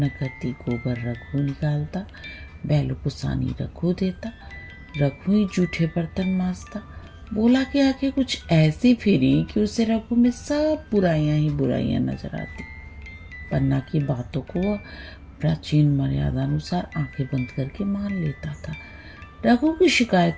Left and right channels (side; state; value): both; identical; correlation 1.00